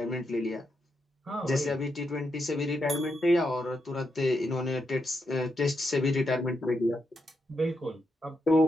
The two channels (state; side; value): normal; both; correlation 0.83